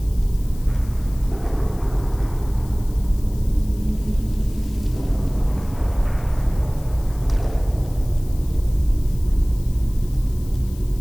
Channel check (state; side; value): noise; left; hiss, 22 dB below the sound